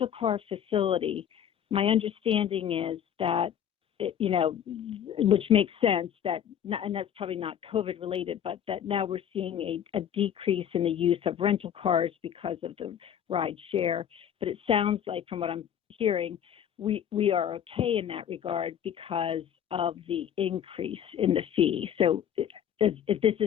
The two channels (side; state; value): right; quieter; 9.4 dB